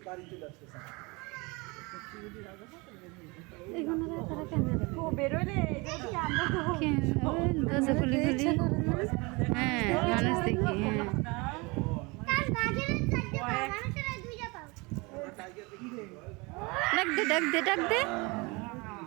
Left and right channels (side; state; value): left; quieter; 26.7 dB